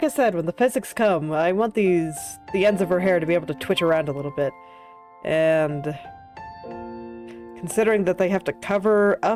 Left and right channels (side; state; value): both; identical; correlation 1.00